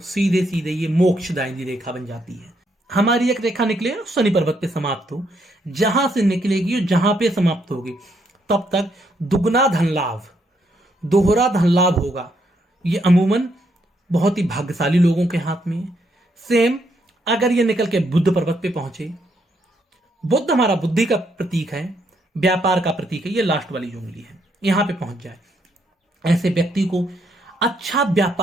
सीधे सीधे ये मोक्षदायिनी रेखा बन जाती है। हमारी एक रेखा निकले शनि पर्वत पे समाप्त हो, जहां से निकलेगी और जहां पे समाप्त होगी तब तक दुगना धन लाभ, दोहरा धन लाभ होगा। ये अमूमन बहुत ही भाग्यशाली लोगों के हाथ में है। सेम अगर ये निकल के बुद्ध पर्वत पे पहुंचे, बुद्ध हमारा बुद्धि का प्रतीक है, व्यापार का प्रतीक है, ये लास्ट वाली जो उंगली है, यहां पे पहुंच जाए, ऐसे व्यक्ति को अच्छा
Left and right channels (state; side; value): normal; both; correlation 0.75